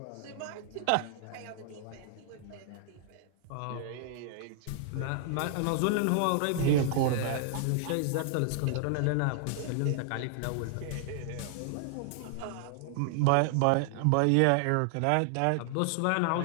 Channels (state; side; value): different; both; correlation 0.00